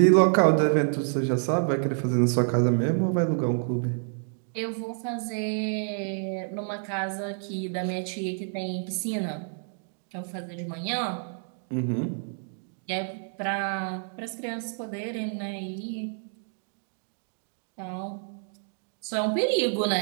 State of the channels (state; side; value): silent; left; 59 dB below the other